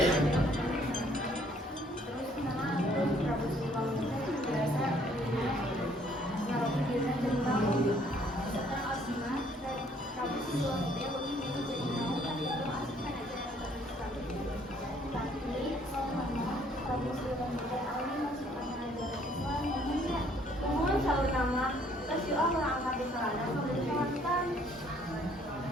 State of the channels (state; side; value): normal; both; correlation 0.62